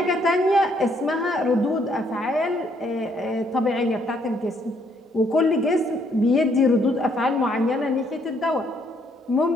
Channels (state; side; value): normal; both; correlation 0.69